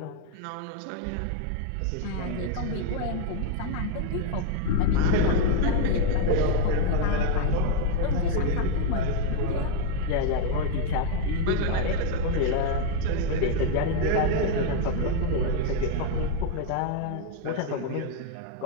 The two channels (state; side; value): different; both; correlation 0.01